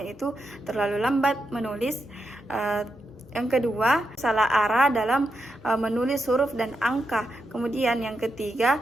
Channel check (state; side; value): normal; both; correlation 0.85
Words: terlalu lambat menulis, yang kedua salah arah dalam menulis huruf dan angka, kemudian yang ketiga